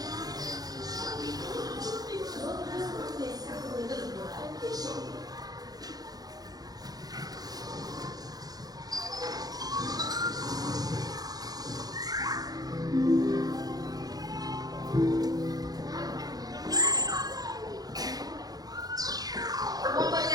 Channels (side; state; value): left; late; 0.19 ms